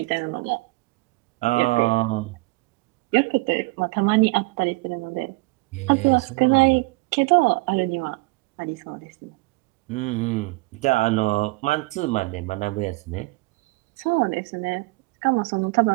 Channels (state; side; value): quieter; left; 24.4 dB